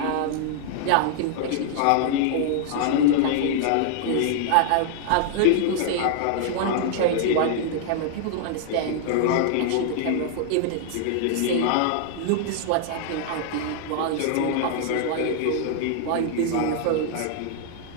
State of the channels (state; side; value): different; both; correlation -0.01